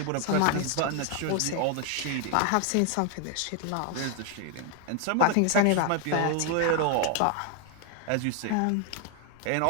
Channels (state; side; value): different; both; correlation 0.00